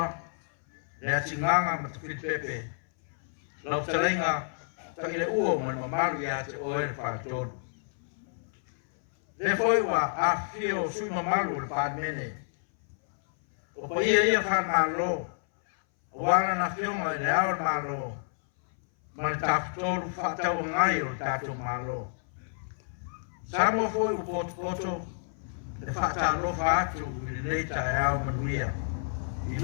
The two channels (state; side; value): silent; right; 58 dB below the other